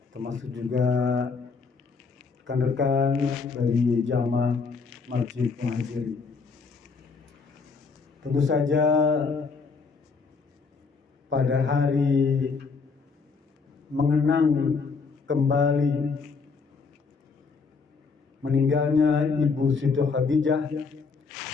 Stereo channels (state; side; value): quieter; right; 4.9 dB